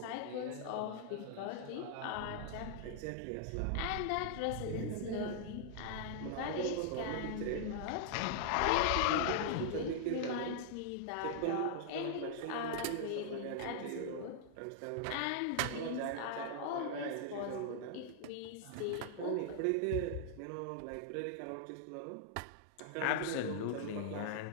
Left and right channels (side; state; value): both; different; correlation -0.01